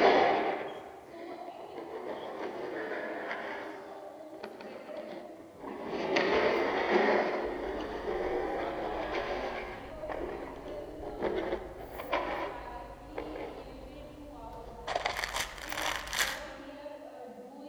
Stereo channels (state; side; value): identical; both; correlation 1.00